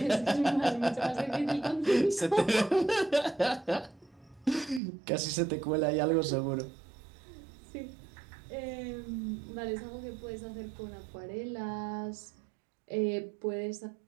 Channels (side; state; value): left; drops out; at 4.8 s